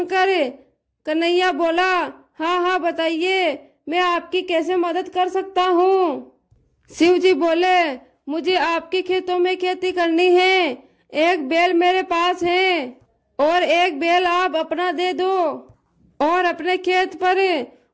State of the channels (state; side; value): identical; both; correlation 1.00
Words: कन्हैया बोला, हाँ हाँ बताइए, मैं आपकी कैसे मदद कर सकता हूँ? शिव जी बोले, मुझे आपके खेतों में खेती करनी है। एक बैल मेरे पास है और एक बैल आप अपना दे दो और अपने खेत पर